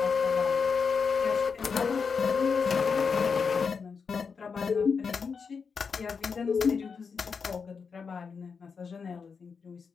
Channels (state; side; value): quieter; right; 5.6 dB